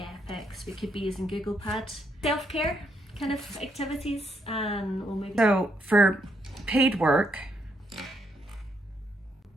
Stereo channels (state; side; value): normal; both; correlation 0.76